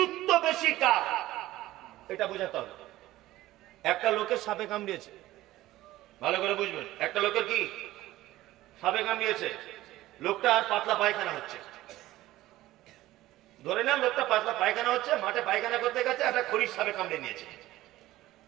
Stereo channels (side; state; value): left; quieter; 16.1 dB